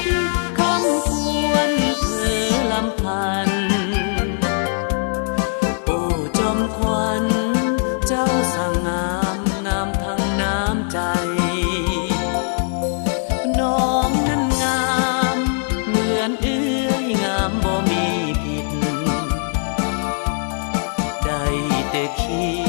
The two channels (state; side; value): silent; right; digital silence